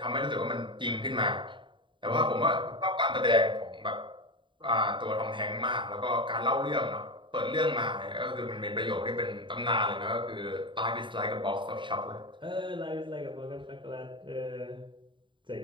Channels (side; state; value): left; late; 0.23 ms